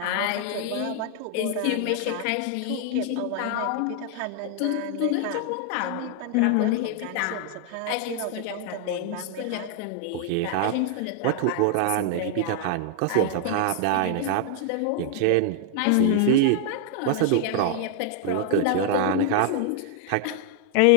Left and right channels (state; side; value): different; both; correlation 0.00